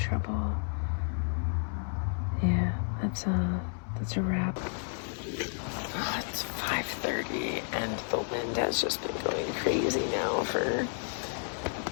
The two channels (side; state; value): right; silent; 56 dB below the other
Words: Yeah, that's a wrap. Oh, it's 5:30 and the wind has just been going crazy now for